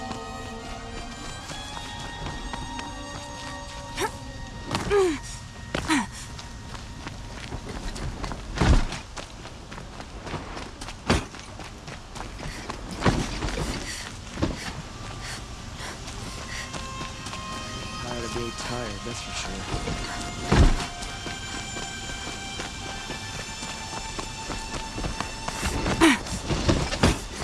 Tired of being tired, that's for sure.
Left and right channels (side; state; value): both; identical; correlation 1.00